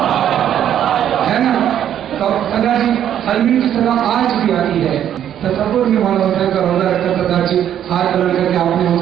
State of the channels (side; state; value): left; quieter; 10.3 dB